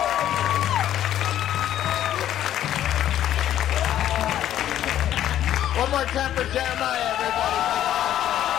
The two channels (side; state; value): right; quieter; 11.7 dB